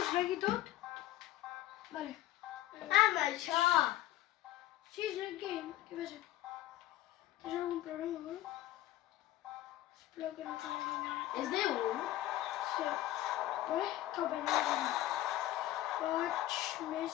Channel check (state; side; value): quieter; right; 14.4 dB